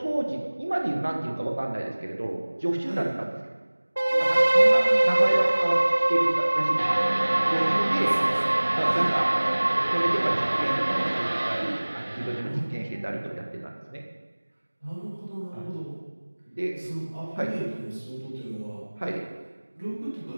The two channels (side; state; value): both; inverted; correlation -1.00